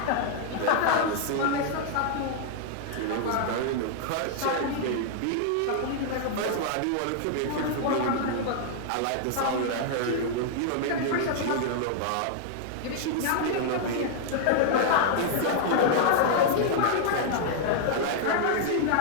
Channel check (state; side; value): different; both; correlation -0.01